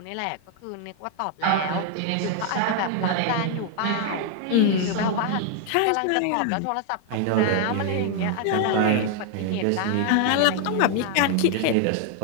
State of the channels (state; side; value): different; both; correlation 0.00